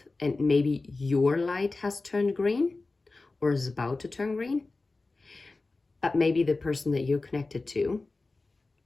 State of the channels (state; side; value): quieter; right; 3.5 dB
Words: and maybe your light has turned green or is about to turn green. But maybe the person that you're connected to